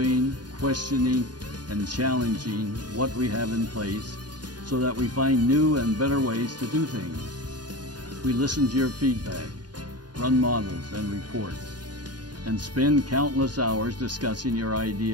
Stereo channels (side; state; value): left; late; 0.70 ms